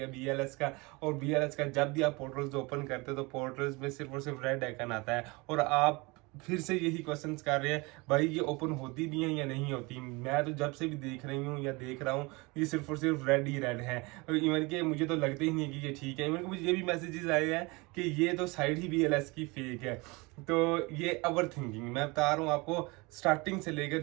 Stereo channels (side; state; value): left; quieter; 25.7 dB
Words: बीएलएस का। और बीएलएस का जब भी आप पोर्टल्स ओपन करते हो तो पोर्टल्स में सिर्फ और सिर्फ रेड आइकन आता है और आप फिर से यही क्वेश्चंस कर रहे हैं भाई ये ओपन होती भी हैं या नहीं होती। मैं तो जब से भी देख रही हूँ या देख रहा हूँ ये सिर्फ और सिर्फ रेड ही रेड है। इवन के मुझे तो लगते ही नहीं कि ये ठीक है। इवन के मुझे ये भी मैसेजेस आए हैं कि ये तो साइड ही बीएलएस की फेक है। तो ये ओवर थिंकिंग मैं बता रहा हूँ आपको, स्टार्टिंग से लेकर